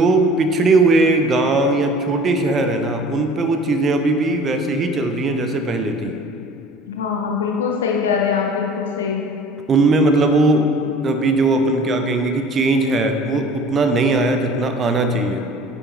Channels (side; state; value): both; normal; correlation 0.46